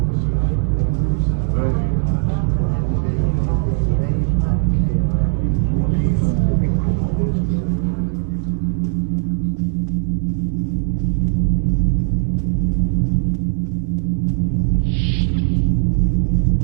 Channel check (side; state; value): left; silent; 67 dB below the other